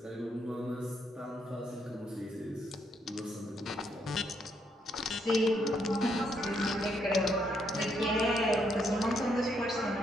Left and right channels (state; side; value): normal; both; correlation 0.75